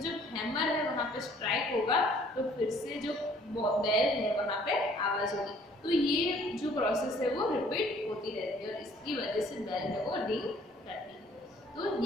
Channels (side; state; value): both; normal; correlation 0.58